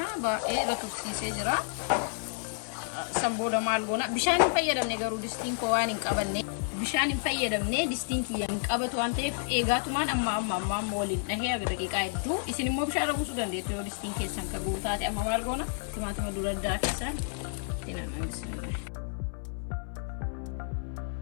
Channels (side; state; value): right; silent; 58 dB below the other